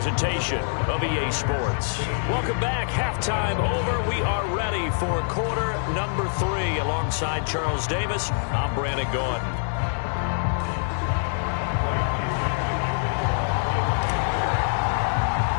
of EA Sports. Welcome back. Halftime over. We are ready for quarter number 3. Alongside Charles Davis, I'm Brandon Gordon.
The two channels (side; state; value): right; silent; digital silence